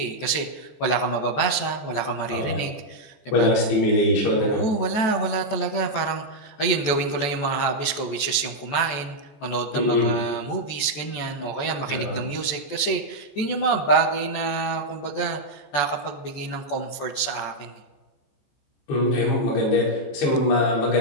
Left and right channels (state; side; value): late; right; 14 ms